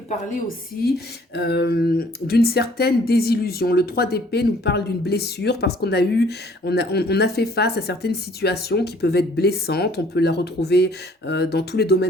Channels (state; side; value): normal; both; correlation 0.58